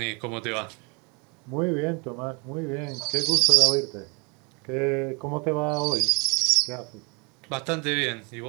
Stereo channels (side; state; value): left; quieter; 32.1 dB